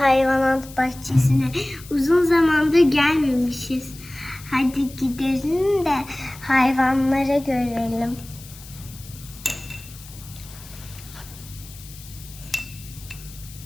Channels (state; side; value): noise; left; hiss, 18 dB below the sound